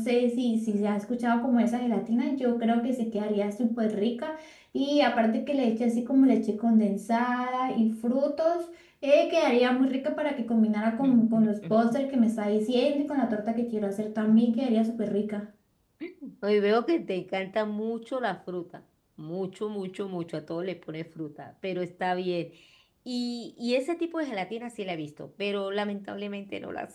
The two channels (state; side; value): identical; both; correlation 1.00